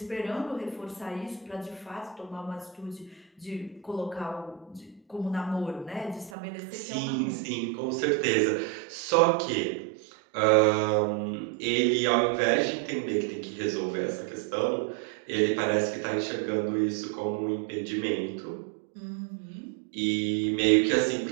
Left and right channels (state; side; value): drops out; left; at 6.3 s